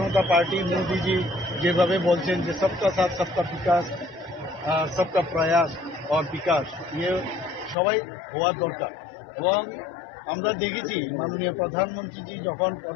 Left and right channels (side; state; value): right; drops out; at 7.8 s